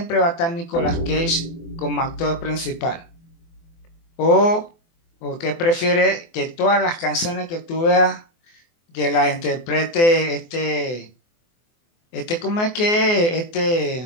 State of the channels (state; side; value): late; right; 24 ms